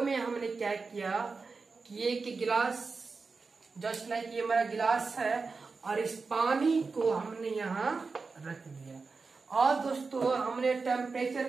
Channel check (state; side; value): quieter; left; 4.4 dB